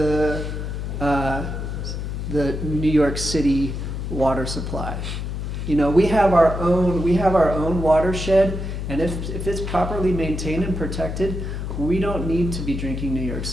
New York City water supply. We have our own watershed, and if it's properly maintained and protected, we don't need to be drinking New York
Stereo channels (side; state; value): left; noise; hum, 4 dB below the sound